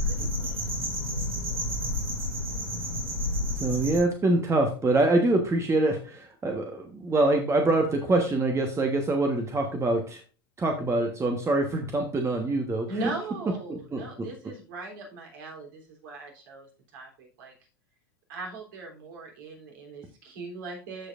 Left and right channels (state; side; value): normal; both; correlation 0.53